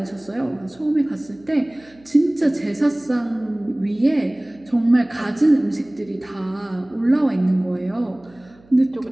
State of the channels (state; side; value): noise; right; hum, 28 dB below the sound